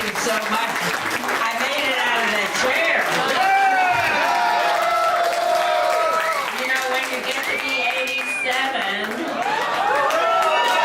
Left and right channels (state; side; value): identical; both; correlation 1.00